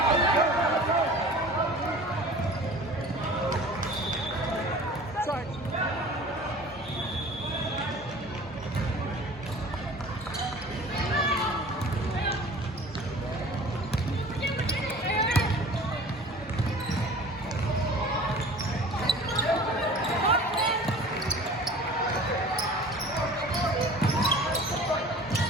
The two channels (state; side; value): normal; both; correlation 0.43